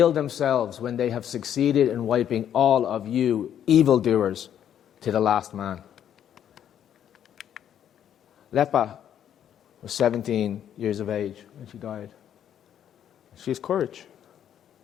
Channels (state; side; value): quieter; right; 9.8 dB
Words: themselves when they have succeeded in wiping all of you evildoers to the last man." Lepa was 17 years of age when she died. She has courage.